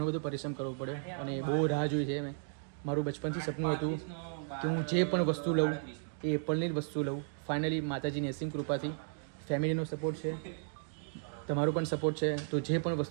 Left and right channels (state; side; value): silent; left; digital silence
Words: બધો પરિશ્રમ કરવો પડ્યો અને બહુ રાહ જોઈ છે. મેં મારું બચપનથી સપનું હતું કે હું જે પણ વસ્તુ લઉં એ એપલની જ વસ્તુ લઉં. ફાઇનલી માતાજીની અસીમ કૃપાથી ફેમિલીનો સપોર્ટ છે, તમારો પણ સપોર્ટ છે, તો જે પણ